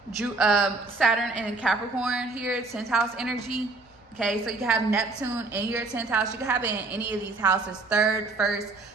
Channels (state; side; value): quieter; left; 3.5 dB